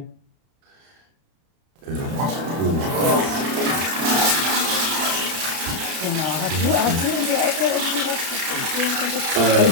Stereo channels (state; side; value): late; left; 31 ms